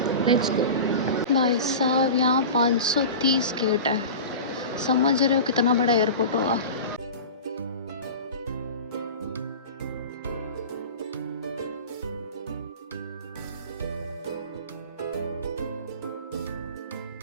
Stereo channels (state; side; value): inverted; both; correlation -0.33